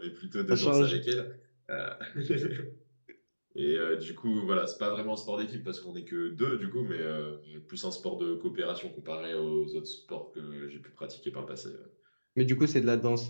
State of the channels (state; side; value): inverted; both; correlation -1.00